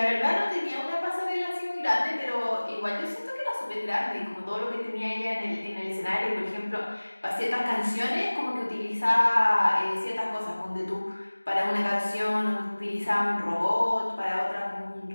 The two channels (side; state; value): both; inverted; correlation -1.00